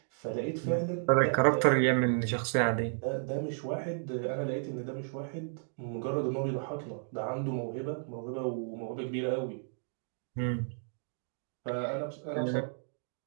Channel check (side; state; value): left; silent; digital silence